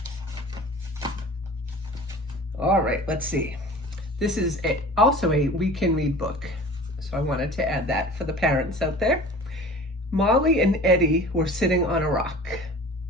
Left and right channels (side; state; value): both; normal; correlation 0.41